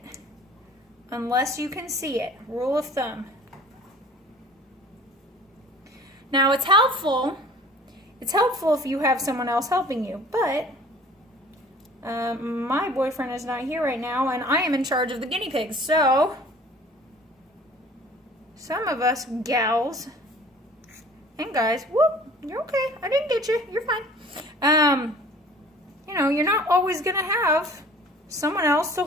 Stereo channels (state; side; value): normal; both; correlation 0.49